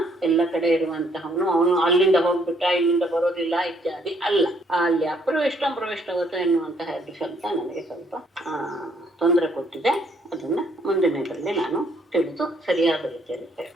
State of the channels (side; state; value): both; normal; correlation 0.67